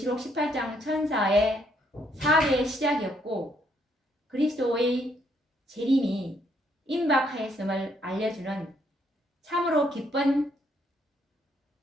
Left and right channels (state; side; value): normal; both; correlation 0.71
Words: 18장 천사의 사업의 시작이었고 그리스도의 재림이 임박하였음을 알려주는 참으로 기쁜